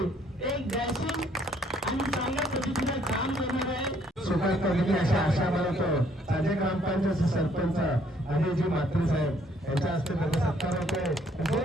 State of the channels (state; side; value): normal; both; correlation 0.65